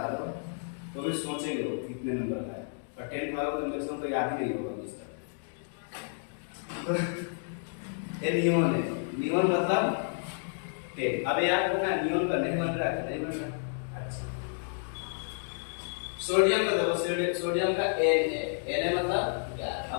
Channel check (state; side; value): silent; right; digital silence